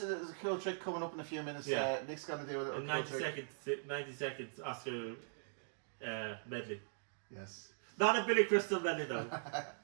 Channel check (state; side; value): silent; left; digital silence